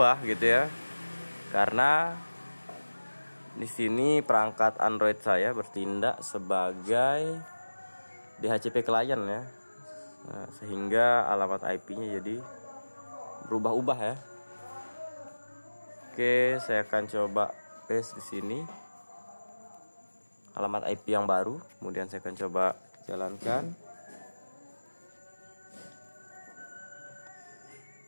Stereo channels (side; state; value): both; inverted; correlation -1.00